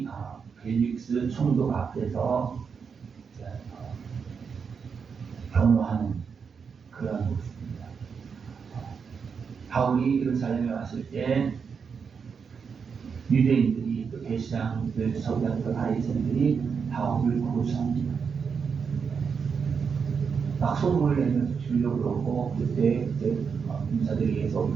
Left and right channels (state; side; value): quieter; left; 6.1 dB